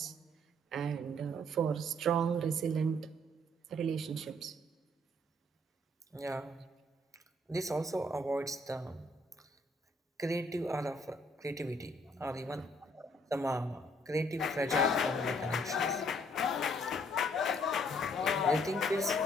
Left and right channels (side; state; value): both; normal; correlation 0.65